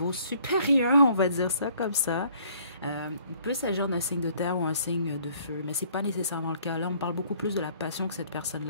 supérieur, on va dire ça comme ça. Il peut s'agir d'un signe de terre ou un signe de feu, mais c'est pas nécessairement le cas. Là, on parle beaucoup plus de la passion que cette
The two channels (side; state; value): both; inverted; correlation -0.60